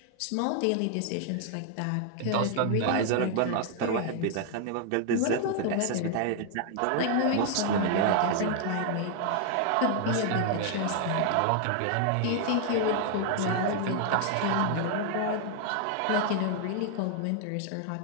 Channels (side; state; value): both; different; correlation 0.00